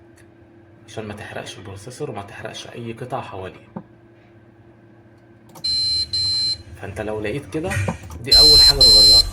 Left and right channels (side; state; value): both; identical; correlation 1.00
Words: عشان ما تحرقش البروسيسور وما تحرقش اي قطع حواليه. فانت لو لقيت كده، دي اول حاجة تغيرها،